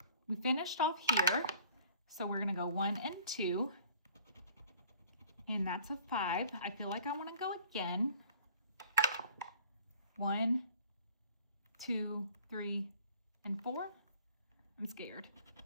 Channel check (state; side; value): inverted; both; correlation -0.52